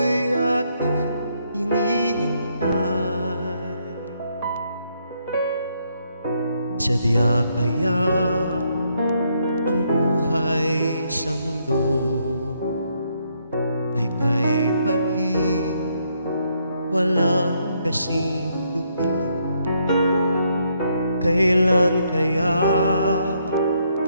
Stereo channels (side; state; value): both; inverted; correlation -0.74